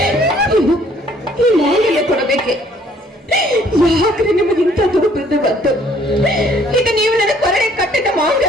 ಈ ಮಾಂಗಲ್ಯ ಕೊಡಬೇಕೆ? ಯಾಕ್ರೆ ನಿಮಗೆ ಇಂಥ ದುರುಪದ ಬಂತು? ಈಗ ನೀವು ನನ್ನ ಕೊರಡೆ ಕಟ್ಟಿದ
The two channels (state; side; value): normal; both; correlation 0.61